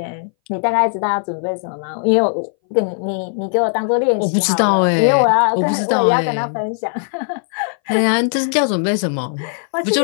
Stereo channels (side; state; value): right; silent; 63 dB below the other